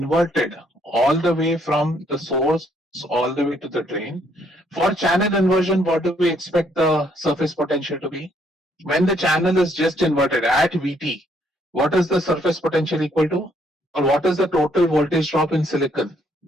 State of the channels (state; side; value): normal; both; correlation 0.69